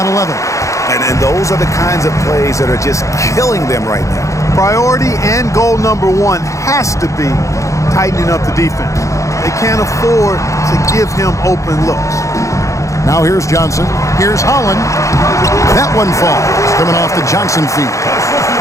11. And those are the kinds of plays that are just killing them right now. Priority and goal number one has to be tightening up the defense. They can't afford to give him open looks. Now here's Johnson. Here's Holland. That one falls. Coming off the Johnson feet.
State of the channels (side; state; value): right; late; 0.15 ms